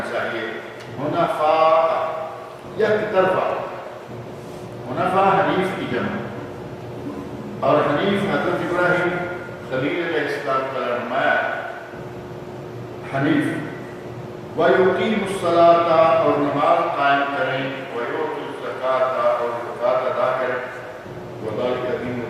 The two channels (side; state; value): both; identical; correlation 1.00